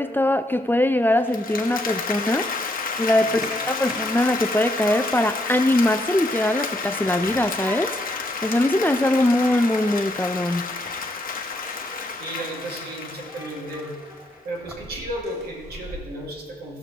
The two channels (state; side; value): normal; both; correlation 0.75